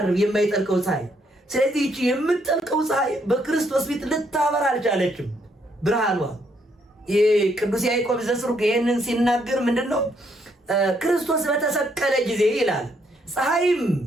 የማይጠልቀው ፀሐይ። ስለዚህ እቺ የምትጠልቀው ፀሐይ በክርስቶስ ፊት ልታበራ አልቻለችም ብርሃኗ። ቅዱስ ያዕቆብ ዘስሩግ ይሄንን ሲናገር ምንድነው ክርስቶስ በተሰቀለ ጊዜ ይላል ፀሐይም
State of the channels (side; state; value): both; normal; correlation 0.72